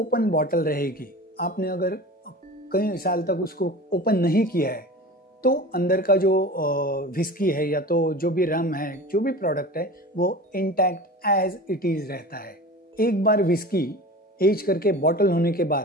बॉटल रहेगी, आपने अगर कई साल तक उसको ओपन नहीं किया है, तो अंदर का जो व्हिस्की है या तो जो भी रम है, जो भी प्रोडक्ट है, वो इंटैक्ट एज इट इज रहता है। एक बार व्हिस्की एज करके बॉटल होने के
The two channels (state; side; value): normal; both; correlation 0.35